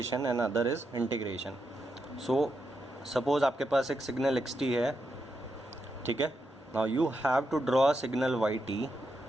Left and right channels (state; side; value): normal; both; correlation 0.84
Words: and other is integration. So suppose आपके पास एक सिग्नल xt है, ठीक है। Now you have to draw a signal yt